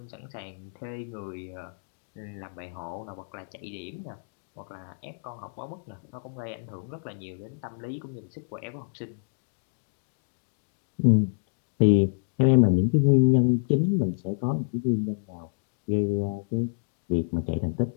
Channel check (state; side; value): silent; right; digital silence